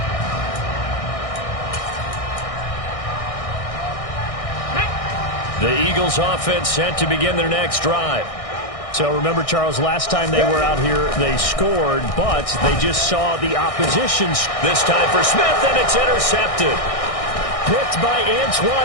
The Eagles offense set to begin their next drive. So remember, Charles, last time they were out here, they scored, but they just saw the opposition. This time for Smith, and it's intercepted. Picked by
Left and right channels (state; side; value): late; right; 1.6 ms